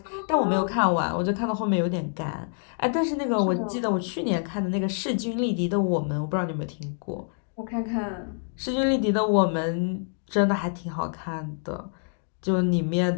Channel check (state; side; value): silent; right; 60 dB below the other